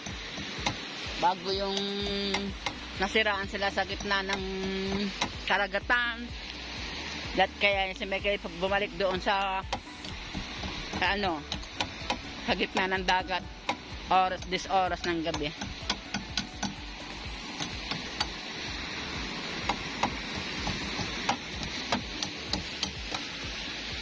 yung nasiraan sila sa gitna ng karagatan. At kaya si Michael bumalik doon sa gitna ng dagat oras ng gabi.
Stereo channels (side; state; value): both; identical; correlation 1.00